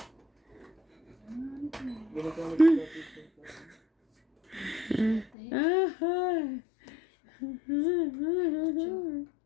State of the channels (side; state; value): right; drops out; at 5.3 s